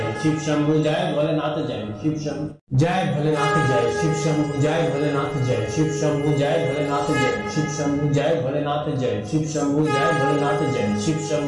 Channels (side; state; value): both; identical; correlation 1.00